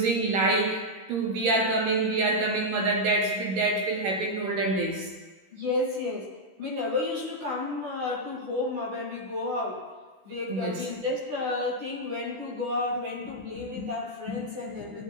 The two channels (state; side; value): late; left; 16 ms